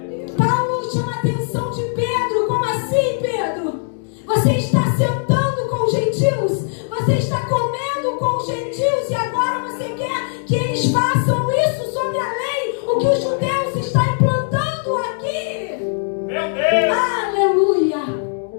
Paulo chama a atenção de Pedro. Como assim, Pedro? Você está sentando com os gentios, você está comendo com os gentios, e agora você quer que eles façam isso sobre a lei, o que os judeus estão implantando aqui. Meu Deus! Aleluia!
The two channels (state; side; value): silent; right; 66 dB below the other